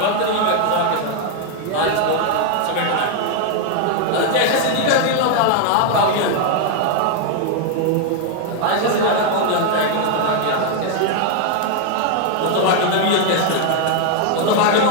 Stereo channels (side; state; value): both; different; correlation 0.00